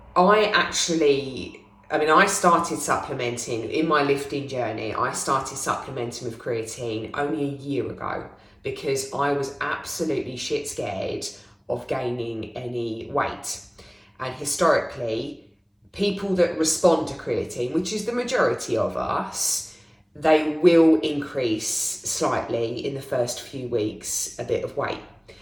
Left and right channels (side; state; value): both; identical; correlation 1.00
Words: started supplementing in my lifting journey. I started supplementing with creatine only a year ago because I was absolutely shit scared of gaining any weight. And historically, people that respond to creatine, which is the majority of us, they will increase slightly in the first few weeks a bit of weight.